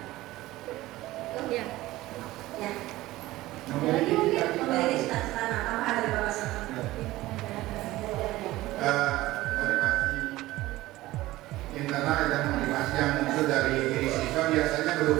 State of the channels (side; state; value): left; quieter; 17.4 dB